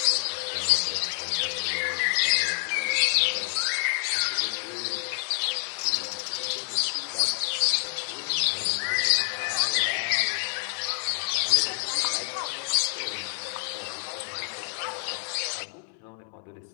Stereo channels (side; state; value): right; silent; 60 dB below the other